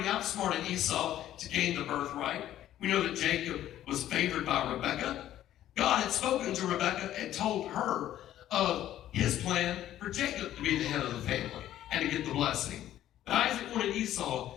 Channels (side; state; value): right; quieter; 12.5 dB